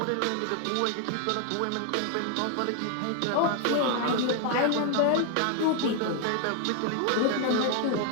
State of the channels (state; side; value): different; both; correlation 0.00